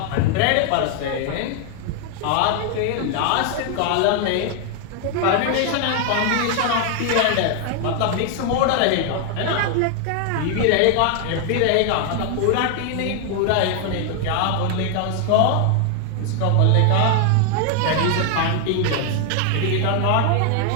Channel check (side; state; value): both; different; correlation 0.00